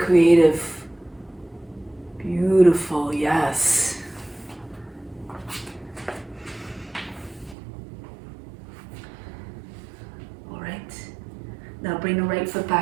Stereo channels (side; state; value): left; drops out; at 7.6 s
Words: Beautiful, yes. All right. Now bring the right foot